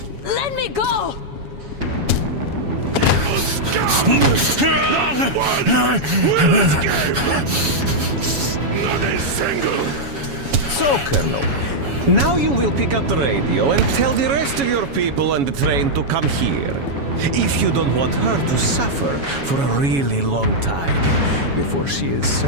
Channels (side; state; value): left; late; 7.2 ms